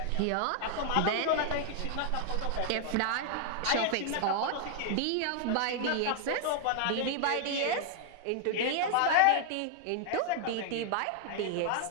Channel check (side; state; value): both; different; correlation 0.00